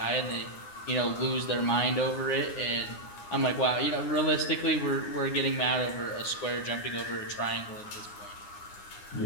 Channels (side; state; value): right; late; 9.8 ms